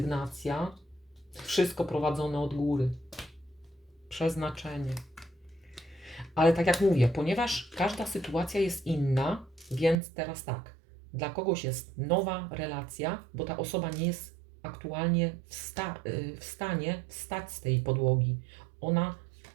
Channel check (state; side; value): drops out; left; at 10.0 s